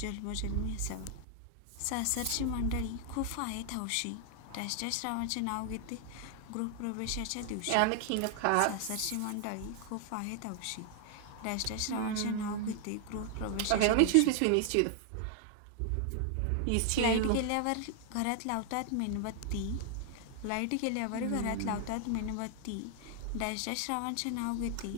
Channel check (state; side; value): different; both; correlation 0.00